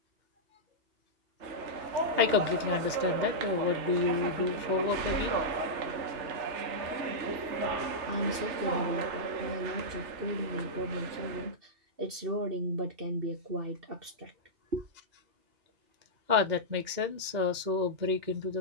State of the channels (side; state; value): left; late; 2.1 ms